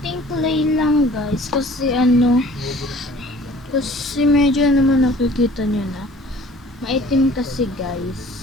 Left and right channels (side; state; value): both; normal; correlation 0.50